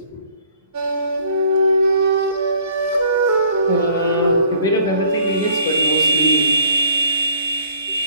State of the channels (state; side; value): inverted; both; correlation -0.58